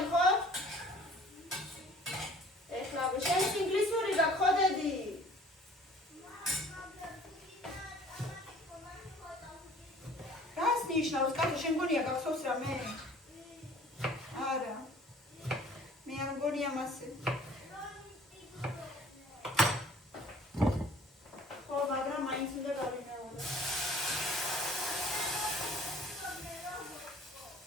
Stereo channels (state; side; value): normal; both; correlation 0.52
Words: ხო? ეხლა შენ ინგლისური გაგხოდედი? რას ნიშნავს, კაცო, შენ მგონია გახსოვს რამე? არა. მე არ მგონია მასე. ხო, მაგრამ მაინც უნდა გავიმეორო.